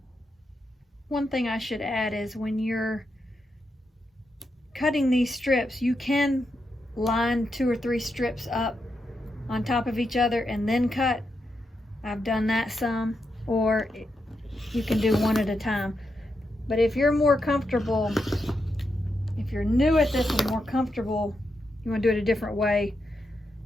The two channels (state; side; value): normal; both; correlation 0.84